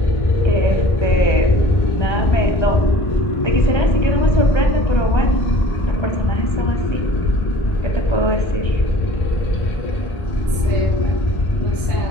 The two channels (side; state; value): right; late; 1.3 ms